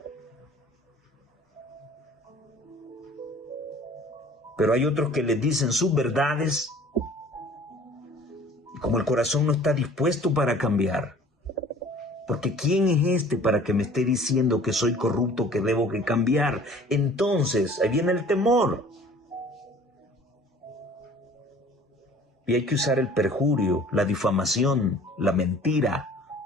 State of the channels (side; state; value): both; normal; correlation 0.50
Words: Pero hay otros que les dicen sus verdades. Como el corazón no está dispuesto para cambiar. Porque ¿quién es este para que me esté diciendo que soy corrupto, que debo que cambiar? Entonces, ahí viene el temor. Y hay que usar el perjurio, la difamación, la mentira.